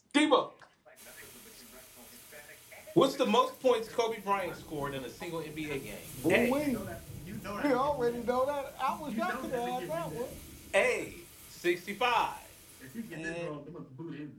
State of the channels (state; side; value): identical; both; correlation 1.00